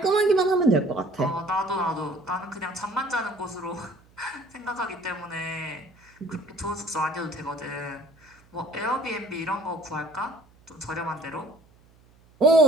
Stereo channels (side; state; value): right; noise; hum, 29 dB below the sound